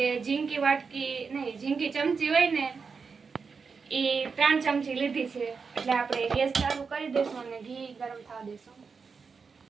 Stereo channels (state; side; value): quieter; left; 5.3 dB